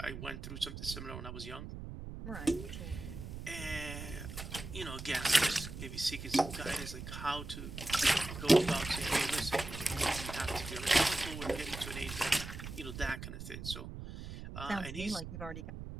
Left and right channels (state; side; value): noise; right; rumble, 9 dB below the sound